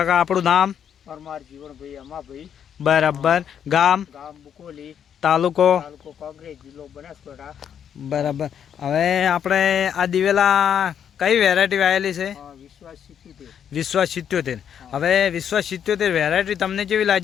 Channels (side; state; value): right; quieter; 8.6 dB